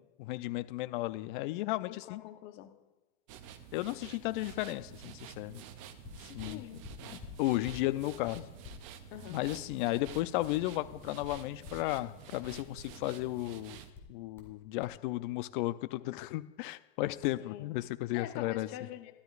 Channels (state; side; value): quieter; right; 14.3 dB